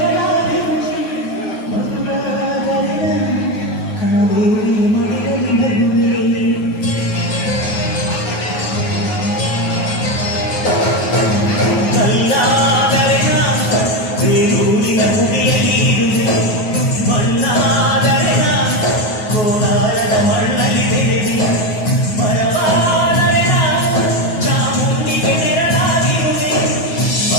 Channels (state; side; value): late; right; 9.4 ms